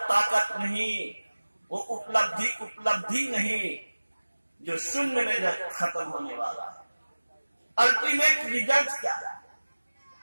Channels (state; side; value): inverted; both; correlation -1.00